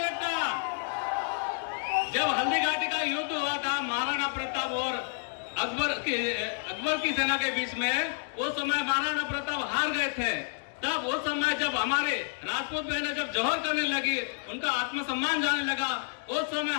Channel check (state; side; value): silent; right; digital silence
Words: जब हल्दी घाटी का युद्ध हुआ था महाराणा प्रताप और अकबर की सेना के बीच में, उस समय महाराणा प्रताप हार गए थे। तब उस समय जब हमारे राजपूत बहनें जब जौहर करने लगी, उनका आत्मसम्मान जाने लगा, उस समय